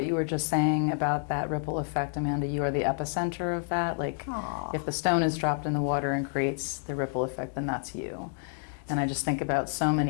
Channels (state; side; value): silent; right; digital silence